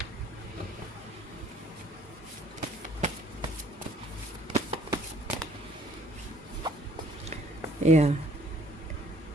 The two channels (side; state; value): both; normal; correlation 0.58